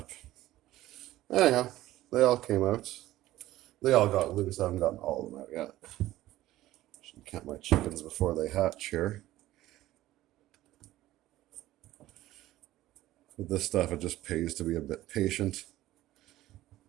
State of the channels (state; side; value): quieter; left; 15.4 dB